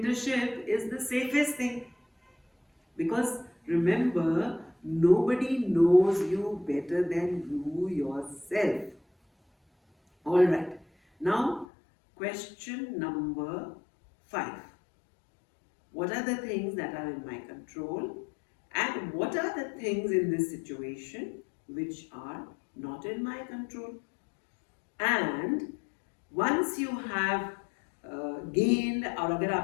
is the safest thing. Because remember, nobody knows you better than you yourself. Alright. Now, question number 5. What are the things that are in my control? And what are the things in this situation which are not in my control? And once you have gained, और अगर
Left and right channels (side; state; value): right; drops out; at 11.7 s